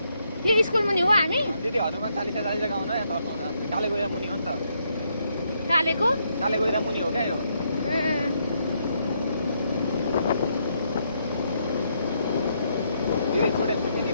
यो स्कुल मुनि हो हामी दिदी हनुमान चालिसा चालिसा गाउन यहाँ तर्साउँछ काले गएर मुनि हो नि त कालेको काले गएर मुनि हो क्या यो दिदी छोडे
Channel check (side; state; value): both; inverted; correlation -0.76